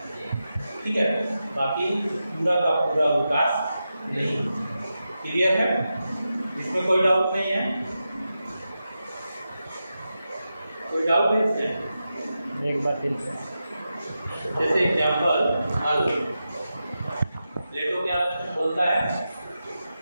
ठीक है। बाकी पूरा का पूरा विकास नहीं। क्लियर है? इसमें कोई डाउट नहीं है? कोई डाउट है इसमें? एक बार फिर जैसे एग्जाम्पल हल, प्लेटो क्या बोलता है,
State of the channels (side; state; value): both; inverted; correlation -0.90